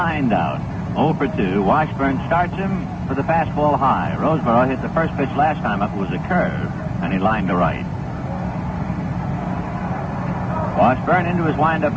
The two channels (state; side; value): identical; both; correlation 1.00